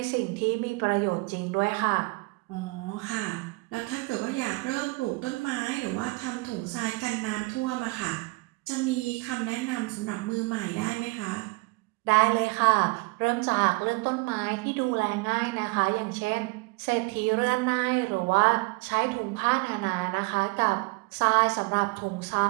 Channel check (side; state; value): left; quieter; 26.6 dB